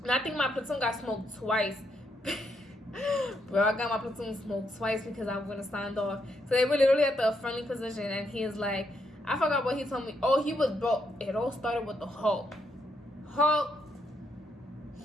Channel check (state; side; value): normal; both; correlation 0.77